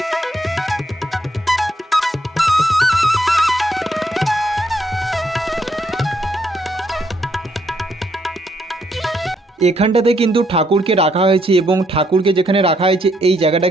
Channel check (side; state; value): both; normal; correlation 0.73